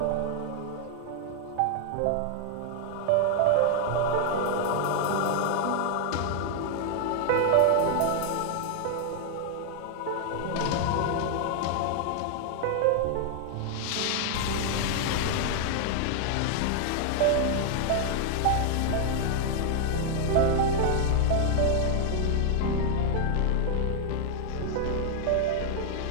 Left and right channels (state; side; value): different; both; correlation 0.00